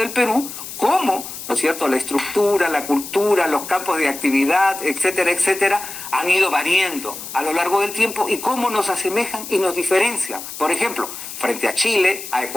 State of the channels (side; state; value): left; noise; hiss, 10 dB below the sound